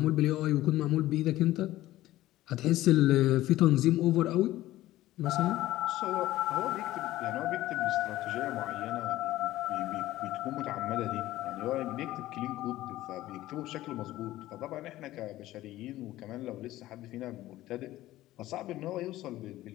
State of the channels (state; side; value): quieter; right; 15.7 dB